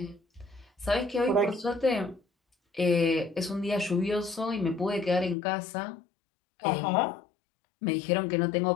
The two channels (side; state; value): right; drops out; at 5.4 s